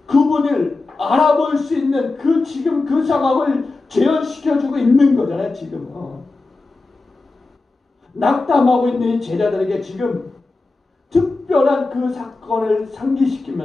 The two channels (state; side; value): quieter; right; 3.5 dB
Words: 그분을 알아볼 수 있는 그 지금 그 상황을 재현시켜주고 있는 거잖아요. 지금 낙담하고 있는 이 제자들에게 지금 특별한 그 사건을